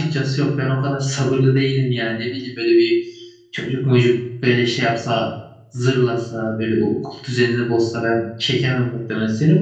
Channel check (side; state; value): both; identical; correlation 1.00